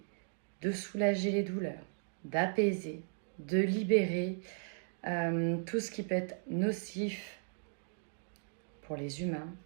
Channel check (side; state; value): left; silent; digital silence